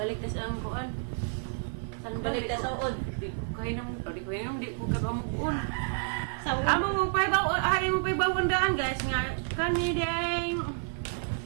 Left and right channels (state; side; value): silent; left; 58 dB below the other